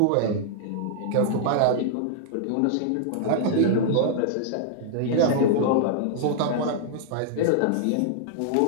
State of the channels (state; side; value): different; both; correlation -0.01